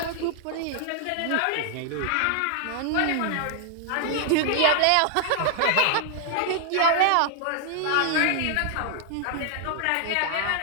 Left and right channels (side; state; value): both; different; correlation 0.00